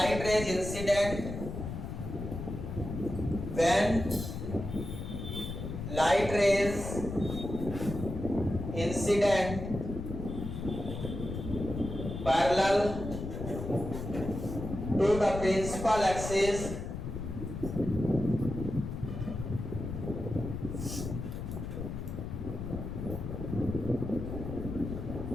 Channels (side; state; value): left; noise; rumble, 6 dB below the sound